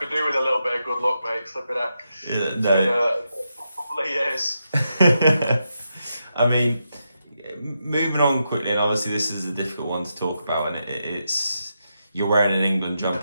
do with a little bit of good luck, mate. Flipping out. Yeah, no. A couple of years. I mean, moving on quickly, and obviously this is a difficult one to talk about, and it's you're wearing an England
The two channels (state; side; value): inverted; both; correlation -0.85